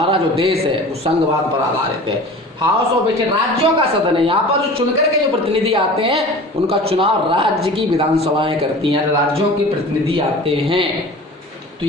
जो देश है वो संघवाद पर आधारित है। हाउस ऑफ स्टेट राज्यों का सदन है, यहाँ पर जो चुनकर के जो प्रतिनिधि आते हैं उनका चुनाव राज्य की विधानसभाएं करती हैं, राज्यों के प्रतिनिधि आते हैं। तो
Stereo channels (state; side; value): normal; both; correlation 0.40